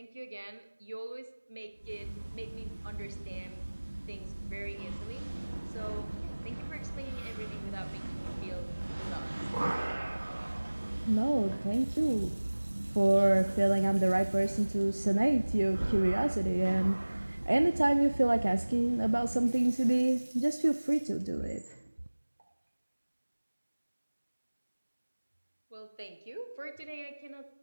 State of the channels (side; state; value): both; inverted; correlation -1.00